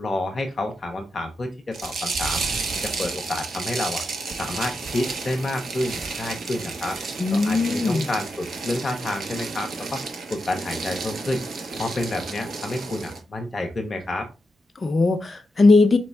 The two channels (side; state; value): both; normal; correlation 0.87